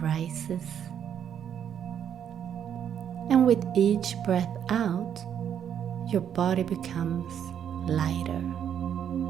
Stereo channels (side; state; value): left; quieter; 8.9 dB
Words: rises. And with each breath out, your body becomes lighter.